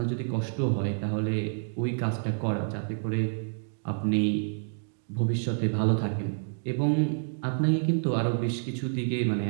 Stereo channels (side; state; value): left; silent; digital silence